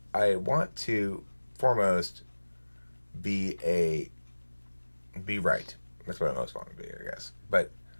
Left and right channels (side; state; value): both; inverted; correlation -1.00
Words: I want to foremost be right. That's what I most want to be, I guess. But